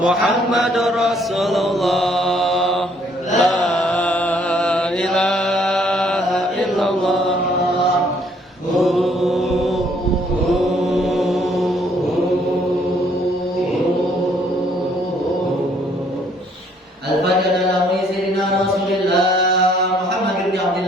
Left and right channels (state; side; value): normal; both; correlation 0.64